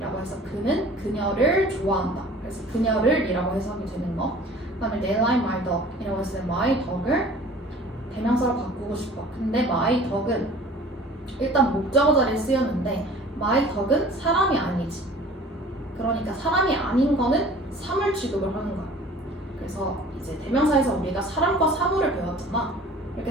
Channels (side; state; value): both; normal; correlation 0.47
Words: 해서 그는 그녀를 좋아한다. 그래서 그녀를 이라고 해석이 되는 거. 그 다음에 They like my dog 이라고 했을 때 my dog을 대명사로 바꾸고 싶어. 근데 my dog은 일단 목적어 자리에 쓰였는데 my dog은 사람이 아니지. 그러니까 사람이 아닌 거는 사물 취급을 하는 거야. 그래서 이제 대명사에서 우리가 사람과 사물을 배웠잖아. 이렇게